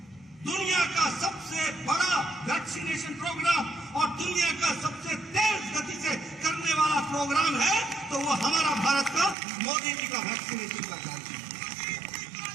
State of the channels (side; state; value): left; drops out; at 9.3 s